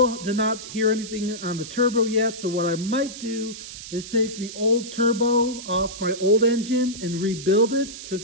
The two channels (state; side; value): noise; right; hiss, 12 dB below the sound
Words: did not hear anything on the turbo yet, so what I might do is take the old turbo off my old engine and rebuild it,